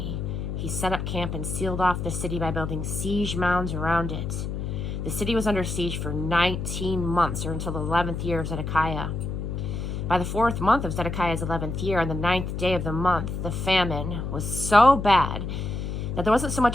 He set up camp and sealed off the city by building siege mounds around it. The city was under siege for 19 months, or until the 11th year of Zedekiah. By the 4th month of Zedekiah's 11th year, on the 9th day of the month, the famine was so bad that there wasn't so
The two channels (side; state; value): left; noise; hum, 4 dB below the sound